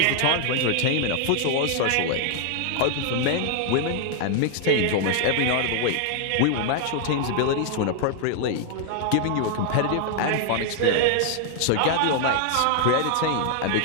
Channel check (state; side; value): different; both; correlation 0.00